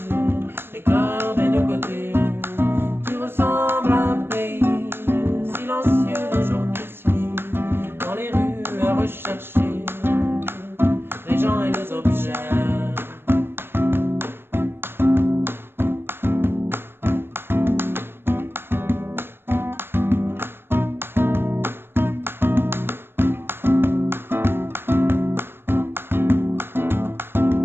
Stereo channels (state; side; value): late; left; 0.11 ms